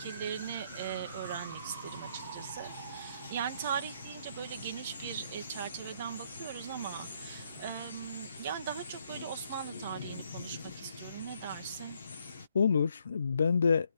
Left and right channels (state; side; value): inverted; both; correlation -0.71